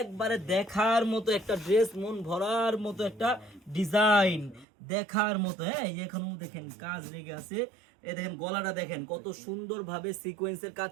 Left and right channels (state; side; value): drops out; left; at 4.7 s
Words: দেখার মতো একটা ড্রেস, মন ভরার মতো একটা ডিজাইন, দেখার মতো। হ্যাঁ এই যে এখনো দেখেন কাজ লেগে আছে। এই দেখেন গলাটা দেখেন কত সুন্দরভাবে সিকোয়েন্সের